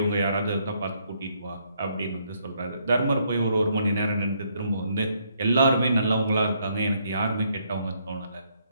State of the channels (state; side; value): inverted; both; correlation -0.72